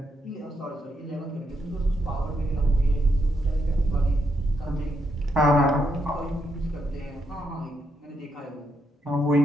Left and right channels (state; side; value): normal; both; correlation 0.79